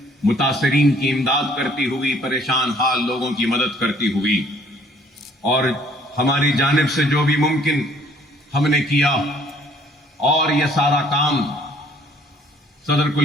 متاثرین کی امداد کرتی ہوئی، پریشان حال لوگوں کی مدد کرتی ہوئی، اور ہماری جانب سے جو بھی ممکن ہم نے کیا، اور یہ سارا کام صدر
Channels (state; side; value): normal; both; correlation 0.59